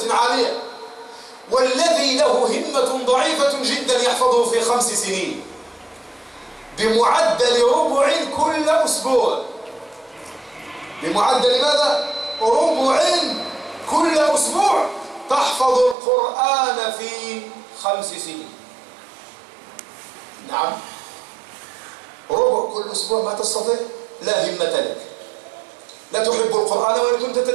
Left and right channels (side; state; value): left; drops out; at 16.0 s